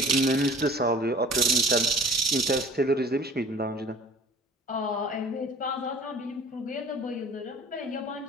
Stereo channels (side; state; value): both; normal; correlation 0.46